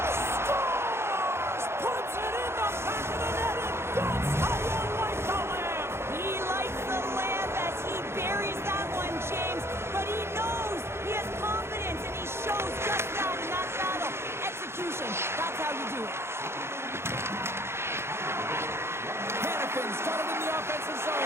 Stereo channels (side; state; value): left; late; 0.12 ms